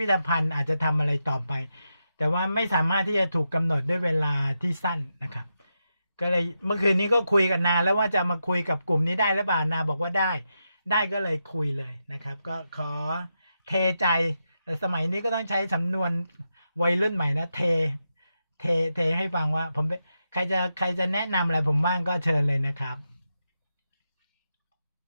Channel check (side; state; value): both; inverted; correlation -0.86